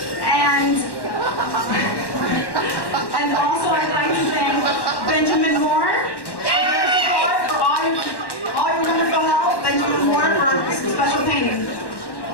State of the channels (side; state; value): right; late; 1.1 ms